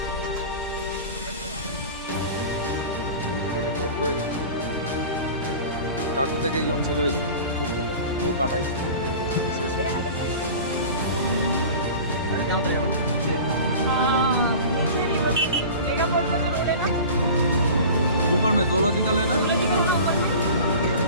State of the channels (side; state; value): both; inverted; correlation -0.37